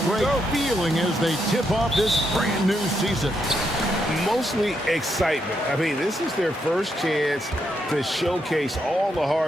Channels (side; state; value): both; normal; correlation 0.80